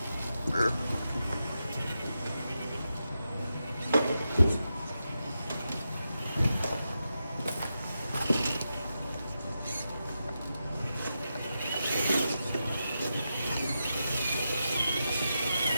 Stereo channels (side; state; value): both; inverted; correlation -0.88